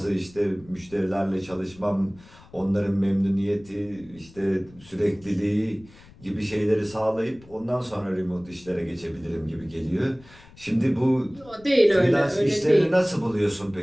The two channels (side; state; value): left; noise; rumble, 24 dB below the sound